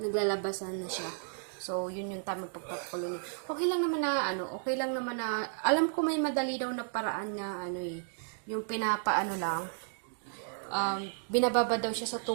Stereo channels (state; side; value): silent; left; digital silence